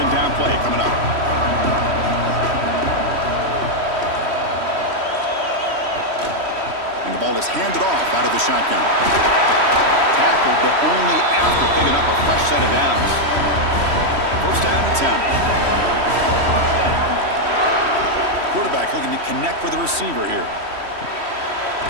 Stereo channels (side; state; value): left; late; 3.1 ms